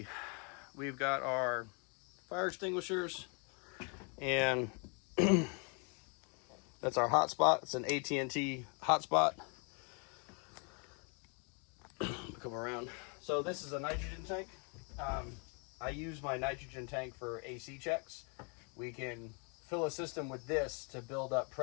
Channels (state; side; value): quieter; right; 36.0 dB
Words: We've got our fire extinguishers, and that's our hotspot. It's an AT&T hotspot. Come around. So this is a nitrogen tank. I use my nitrogen tank for AC checks. We can fill a system with this to build up